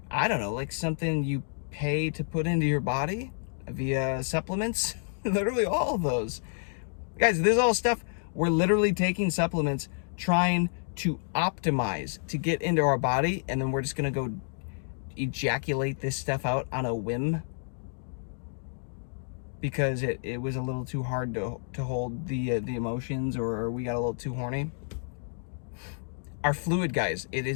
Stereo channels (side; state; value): right; silent; digital silence